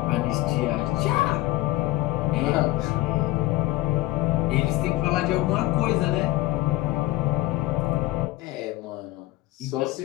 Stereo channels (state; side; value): quieter; right; 17.6 dB